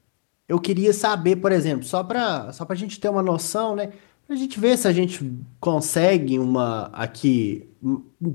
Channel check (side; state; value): right; silent; 64 dB below the other